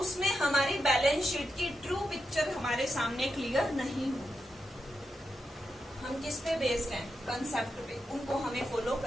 हमारी बैलेंस शीट की ट्रू पिक्चर हमारे सामने क्लियर नहीं होगी। हम किस पे बेस्ड हैं? कंसेप्ट पे, उनको हमें फॉलो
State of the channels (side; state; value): both; normal; correlation 0.86